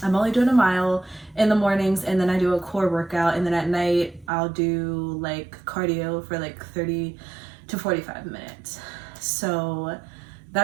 only doing a mile in the mornings, and then I do a core workout, and then at night I'll do like cardio for like 30 to 45 minutes. So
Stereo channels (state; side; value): drops out; left; at 4.3 s